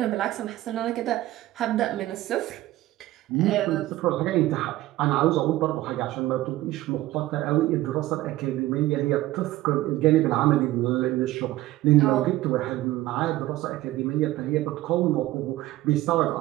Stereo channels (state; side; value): quieter; left; 16.3 dB